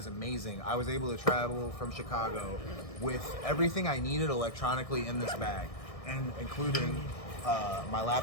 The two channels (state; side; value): late; right; 1.6 ms